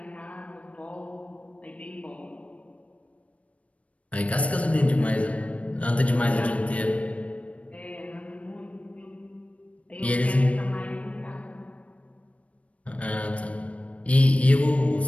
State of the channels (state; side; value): late; right; 0.065 ms